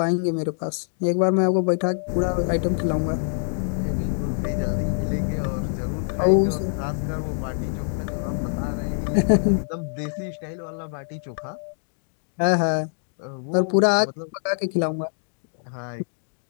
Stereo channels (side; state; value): right; silent; digital silence